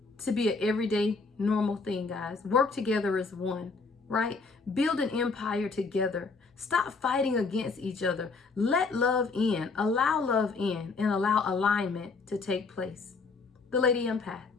to be an everyday normal thing, guys. Work together as one, right? Build an empire together. Stop fighting against each other. Let love in, allow love in, and allow alignment to take place. The Lady Empath,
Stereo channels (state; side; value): quieter; right; 4.3 dB